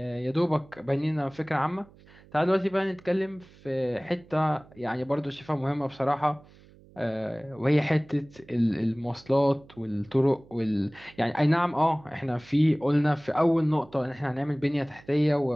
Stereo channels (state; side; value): noise; right; hum, 25 dB below the sound